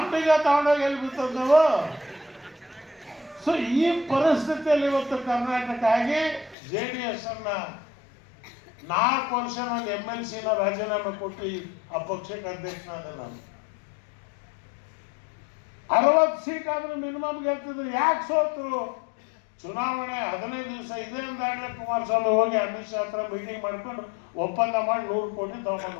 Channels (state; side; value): drops out; right; at 6.6 s